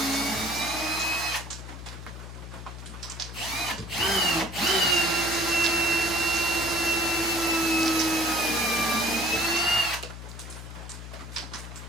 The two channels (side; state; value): left; noise; hum, 11 dB below the sound